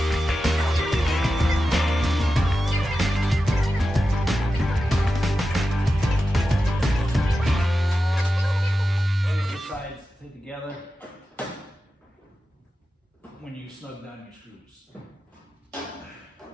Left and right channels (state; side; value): normal; both; correlation 0.92